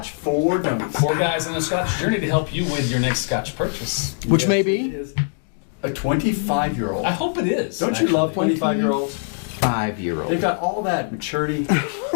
for Dummies. 4 guys on a Scotch journey to help you with your next Scotch purchase. Which Yes, may it be is a 25-year-old. I hope it is. Don't you love 25-year-olds? 5-year-old. They've got all that maturity.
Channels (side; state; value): right; silent; digital silence